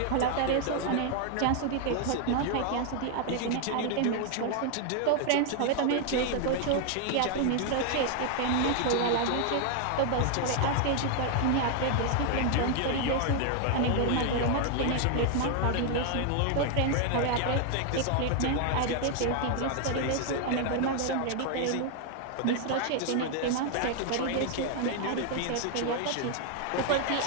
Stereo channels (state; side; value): different; both; correlation 0.00